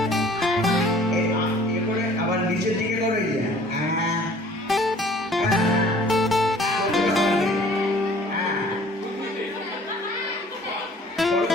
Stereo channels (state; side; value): normal; both; correlation 0.52